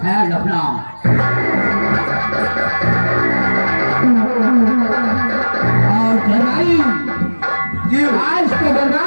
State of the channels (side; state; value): both; inverted; correlation -1.00